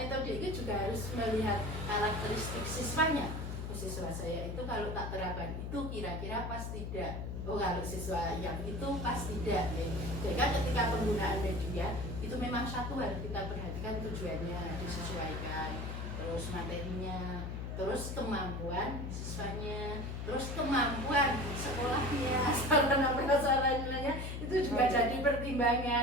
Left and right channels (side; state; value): left; noise; hum, 5 dB below the sound